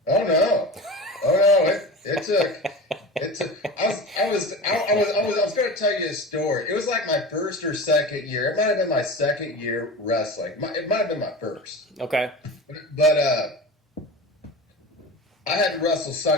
Oh no! It took. I was going to tell you a story. It was like my first or second year. It might have been my second year wrestling. It might have been my first. Okay. But I had to wrestle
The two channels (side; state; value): both; normal; correlation 0.31